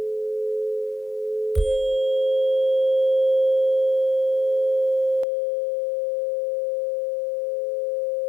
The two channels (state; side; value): drops out; right; at 5.2 s